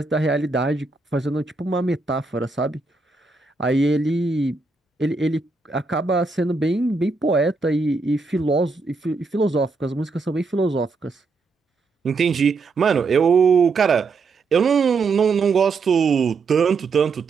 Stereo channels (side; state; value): left; quieter; 4.1 dB